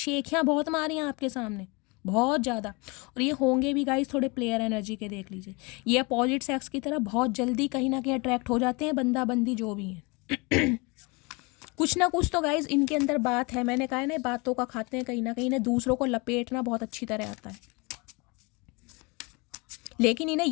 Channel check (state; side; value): quieter; right; 28.0 dB